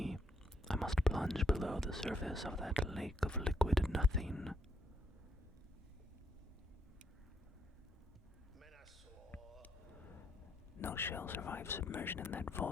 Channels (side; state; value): both; normal; correlation 0.75